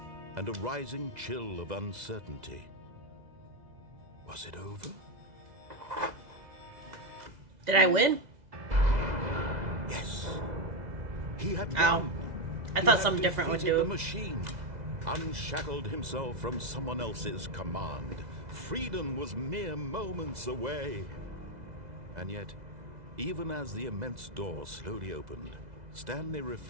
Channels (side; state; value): left; late; 2.0 ms